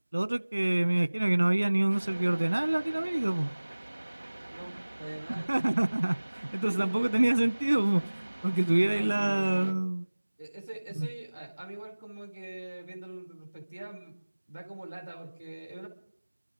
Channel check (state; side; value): inverted; both; correlation -1.00